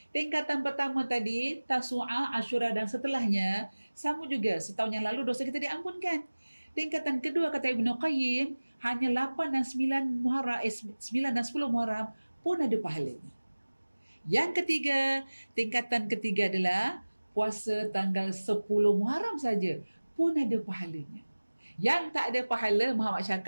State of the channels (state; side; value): inverted; both; correlation -1.00